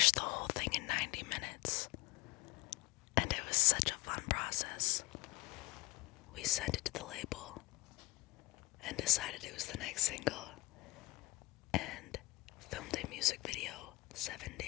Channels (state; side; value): quieter; right; 21.2 dB